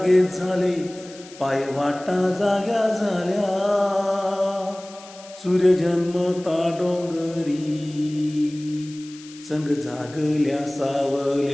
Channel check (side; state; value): left; noise; hiss, 20 dB below the sound